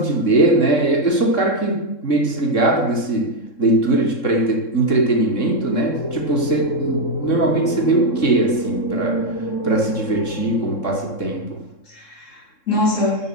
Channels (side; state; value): right; late; 3.7 ms